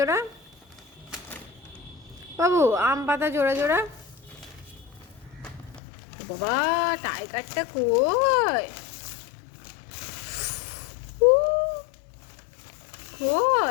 বাবু, আম পাতা জোড়া জোড়া। বাবা টাইগারটা কই? উ,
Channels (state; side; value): drops out; right; at 5.8 s